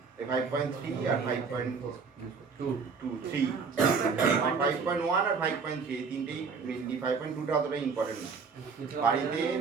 5.3 আর 5.3, 5.1 আর 5.3 এই তিনটেই মেনলি। 5.2টা অতটা ইম্পর্টেন্ট না। বাড়িতে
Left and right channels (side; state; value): left; quieter; 5.3 dB